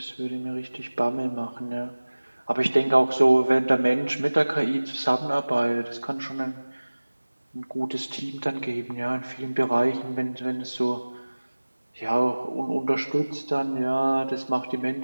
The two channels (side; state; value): both; inverted; correlation -1.00